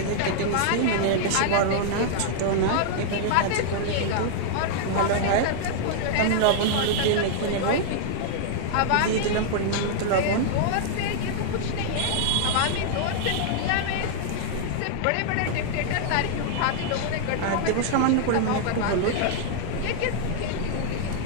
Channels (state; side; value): different; both; correlation -0.01